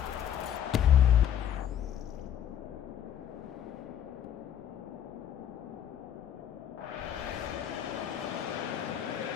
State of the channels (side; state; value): right; quieter; 9.9 dB